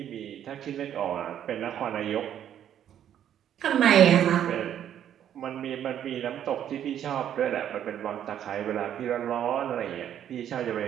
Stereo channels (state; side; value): quieter; left; 10.2 dB